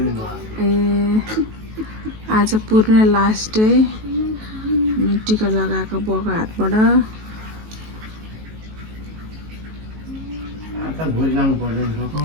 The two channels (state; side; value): late; left; 19 ms